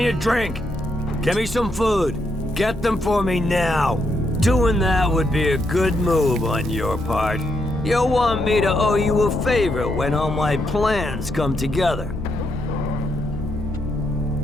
a drink. Give me some food. Get them for me now. Doing that would be a good move on your part. You'll want me to owe you a favor when all my plans come together.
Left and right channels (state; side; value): normal; both; correlation 0.79